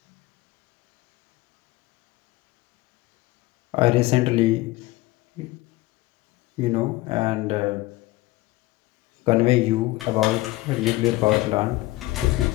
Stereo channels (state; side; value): quieter; right; 19.3 dB